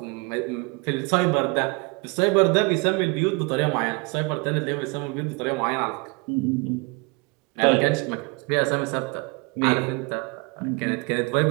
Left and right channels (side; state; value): left; quieter; 28.1 dB